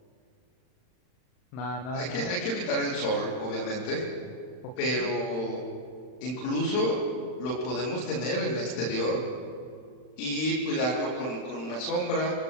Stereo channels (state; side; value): late; right; 39 ms